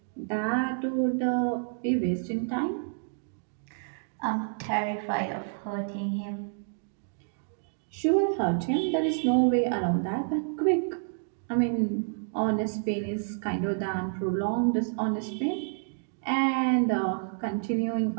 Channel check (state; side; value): silent; left; digital silence